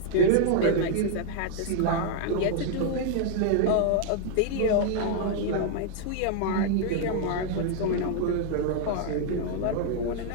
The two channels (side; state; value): both; different; correlation 0.00